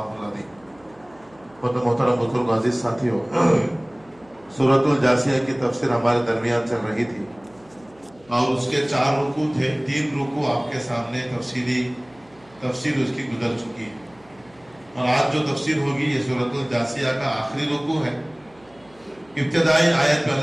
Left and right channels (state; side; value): noise; right; hum, 29 dB below the sound